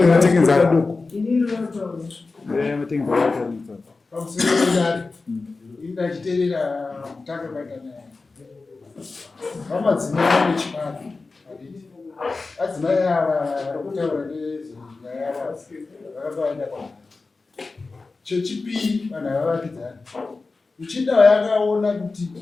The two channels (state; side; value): quieter; right; 3.8 dB